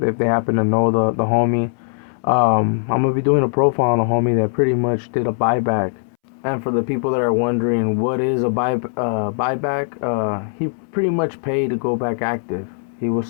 they happen to know the homie. I'm gonna be doing a profile on a homie that pretty much did a buyback. And for the people that are wondering what is a buyback, he pretty much paid to go back active. He was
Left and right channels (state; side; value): silent; right; 66 dB below the other